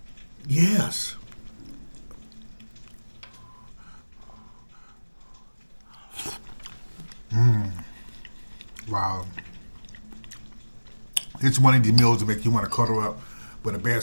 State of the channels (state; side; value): inverted; both; correlation -1.00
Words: yes. Wow. It's one of the meals that make you want to cuddle up with a